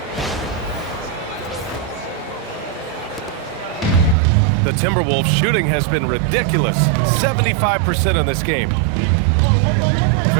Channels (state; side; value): drops out; left; at 4.2 s